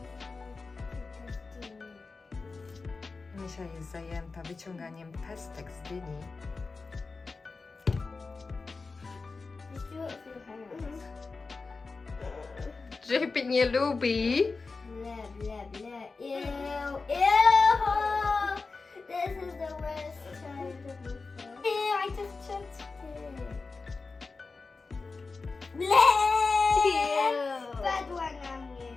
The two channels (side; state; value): right; quieter; 4.1 dB